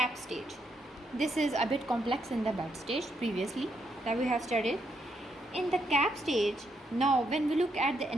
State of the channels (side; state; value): both; normal; correlation 0.77